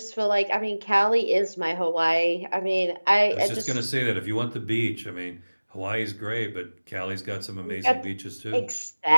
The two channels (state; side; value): inverted; both; correlation -1.00